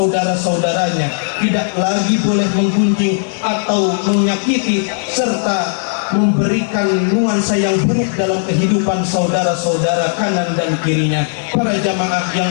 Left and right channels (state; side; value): silent; right; digital silence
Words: tidak lagi boleh menggunjing atau menyakiti serta memberikan nuansa yang buruk dalam kehidupan saudara-saudara kanan dan kirinya. Para jamaah